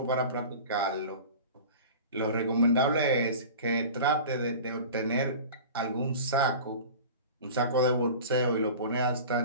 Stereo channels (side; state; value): both; inverted; correlation -0.36